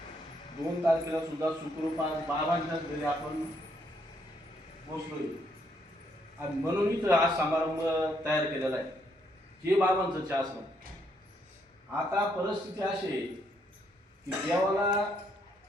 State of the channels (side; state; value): both; normal; correlation 0.73